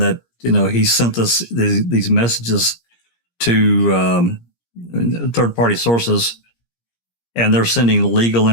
he sent us these messages to third-party sources, and they're sending legal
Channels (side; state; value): right; late; 17 ms